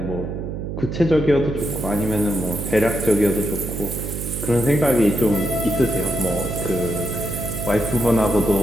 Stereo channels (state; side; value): noise; right; hum, 5 dB below the sound